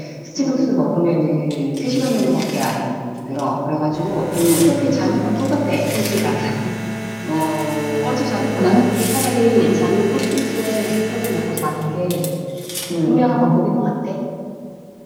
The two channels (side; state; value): both; identical; correlation 1.00